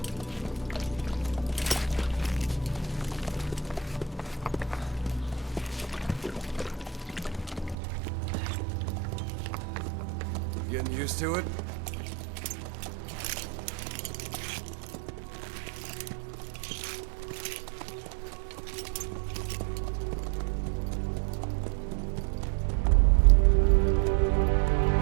Getting used to it?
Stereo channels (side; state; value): left; drops out; at 7.8 s